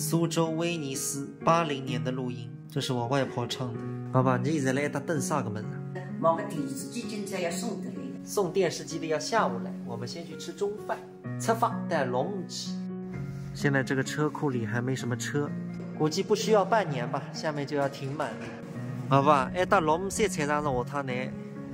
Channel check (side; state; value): both; identical; correlation 1.00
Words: 州威尼斯80年的录音，这是我外婆唱的。爸爸，你现在来打等啥个门啊？某个电视机今朝要送得来。送电视机的要下午来，我们先去吃中饭。出发带龙旗。现在这个车库里还没什么车，估计不需要半年吧，下面就要停满了。爸爸，到龙山菜场上下趟呢？